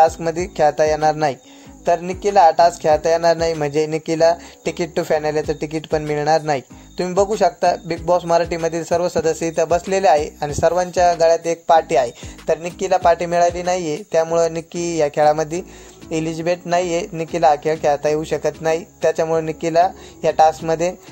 खेळता येणार नाही। तर निक्कीला हा टास्क खेळता येणार नाही म्हणजे निक्कीला तिकीट टू फायनलचं तिकीट पण मिळणार नाही। तुम्ही बघू शकता बिग बॉस मराठीमधील सर्व सदस्य इथं बसलेले आहे आणि सर्वांच्या गळ्यात एक पार्टी आहे। तर निक्कीला पार्टी मिळाली नाही आहे, त्यामुळे निक्की या खेळामध्ये एलिजिबल नाही आहे। निक्कीला हा खेळ खेळता येऊ शकत नाही, त्याच्यामुळे निक्कीला या टास्कमध्ये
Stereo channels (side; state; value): both; identical; correlation 1.00